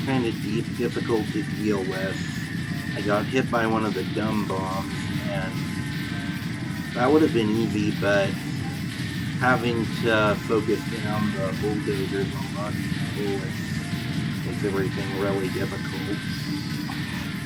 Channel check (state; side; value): identical; both; correlation 1.00